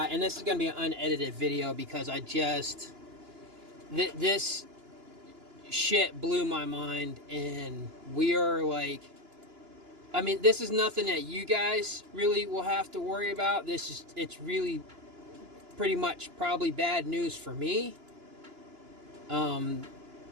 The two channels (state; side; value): late; left; 2.9 ms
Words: and this is going to be an unedited video because this shit blew my mind, and we are like. I mean, this is nothing that you guys really will have to worry about. It's really pretty much probably bad news for me. When